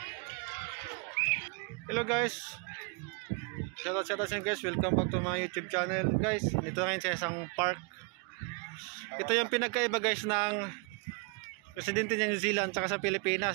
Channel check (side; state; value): left; quieter; 32.9 dB